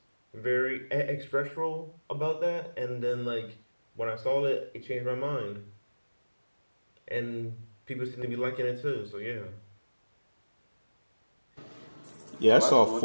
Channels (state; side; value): inverted; both; correlation -1.00